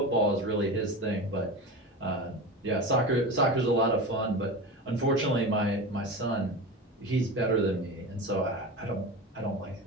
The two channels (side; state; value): both; normal; correlation 0.27